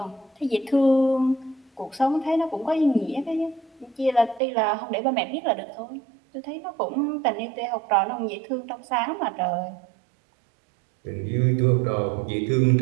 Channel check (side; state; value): left; drops out; at 4.4 s